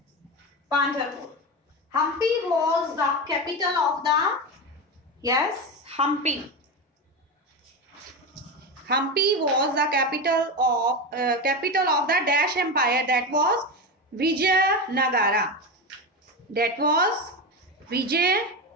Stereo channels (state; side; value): normal; both; correlation 0.18